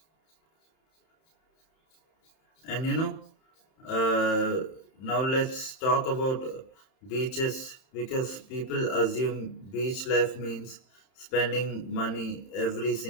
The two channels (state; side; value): late; right; 31 ms